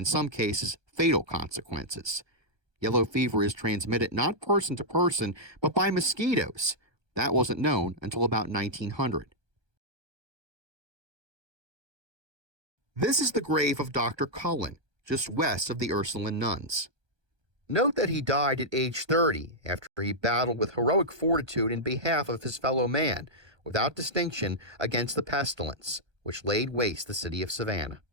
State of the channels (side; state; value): left; late; 1.2 ms